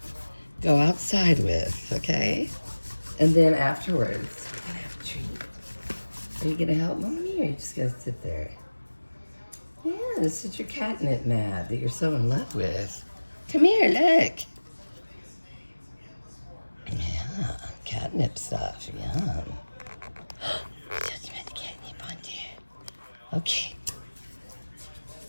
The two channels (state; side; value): inverted; both; correlation -1.00